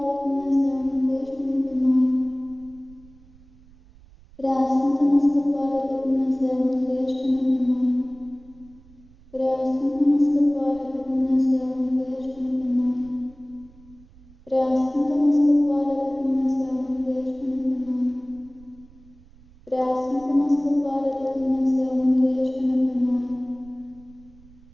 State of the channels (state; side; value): noise; right; rumble, 25 dB below the sound